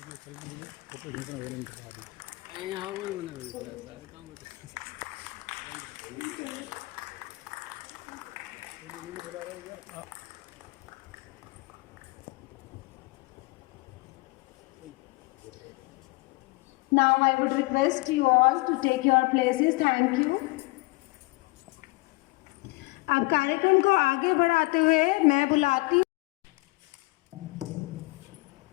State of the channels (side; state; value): right; quieter; 24.8 dB